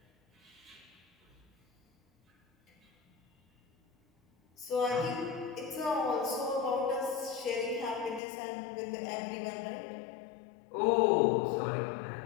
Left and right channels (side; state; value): right; drops out; at 8.2 s